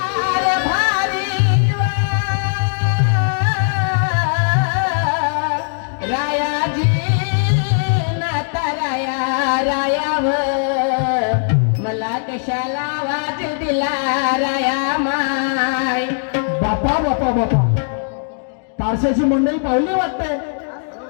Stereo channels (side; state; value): right; silent; digital silence